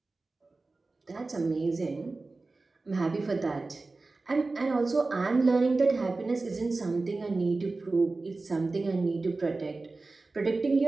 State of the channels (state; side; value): quieter; left; 3.5 dB